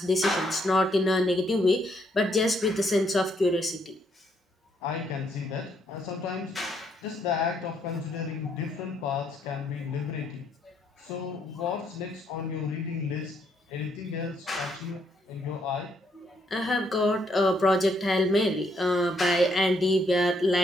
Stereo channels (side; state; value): both; normal; correlation 0.72